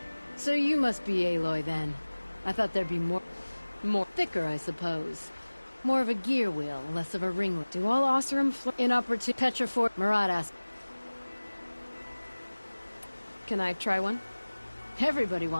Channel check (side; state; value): both; inverted; correlation -1.00